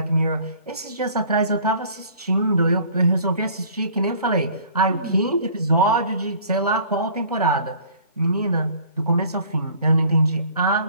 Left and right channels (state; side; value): inverted; both; correlation -0.52